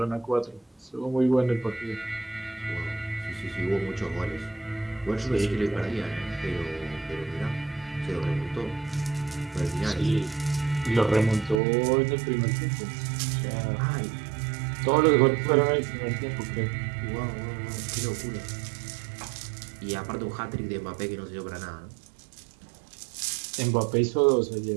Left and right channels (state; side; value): drops out; left; at 11.6 s